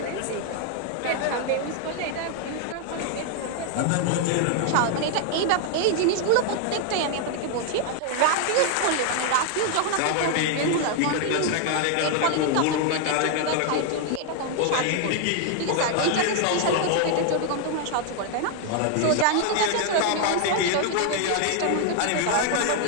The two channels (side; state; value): both; different; correlation 0.00